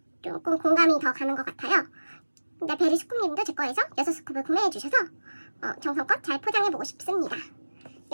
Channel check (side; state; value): both; inverted; correlation -1.00